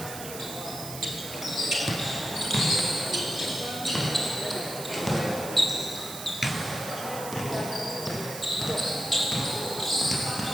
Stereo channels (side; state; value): right; noise; hiss, 10 dB below the sound